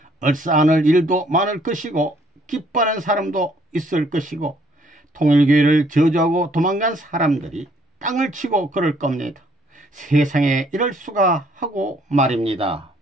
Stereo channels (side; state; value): both; normal; correlation 0.64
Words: 얼싸안을 일도 많을 것이고 기뻐하는 사람도 있을 것이고 통일교회를 저주하고 도망간 사람들이 땅을 치고 그럴 겁니다. 세상에 이럴 수가 하고 말입니다.